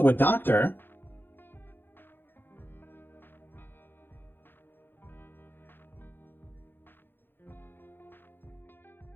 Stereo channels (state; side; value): late; right; 0.10 ms